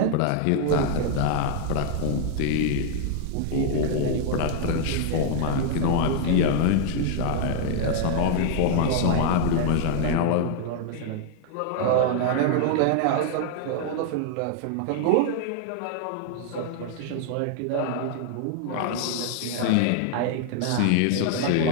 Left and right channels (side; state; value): both; different; correlation 0.00